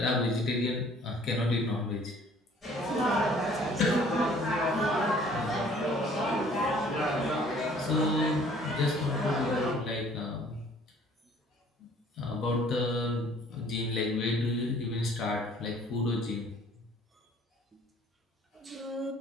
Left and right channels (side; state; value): both; normal; correlation 0.56